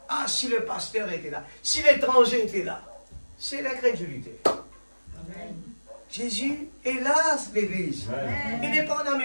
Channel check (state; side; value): inverted; both; correlation -1.00